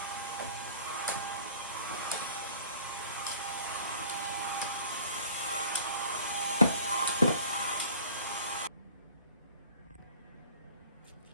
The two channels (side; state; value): both; inverted; correlation -0.46